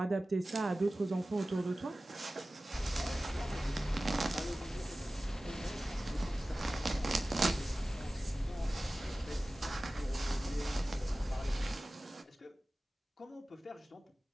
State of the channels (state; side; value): normal; both; correlation 0.96